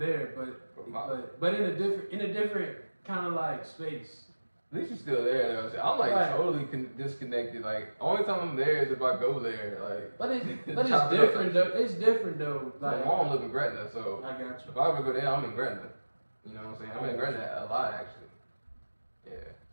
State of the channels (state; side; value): inverted; both; correlation -1.00